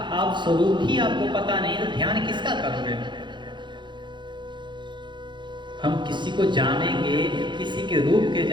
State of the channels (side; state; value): left; late; 0.23 ms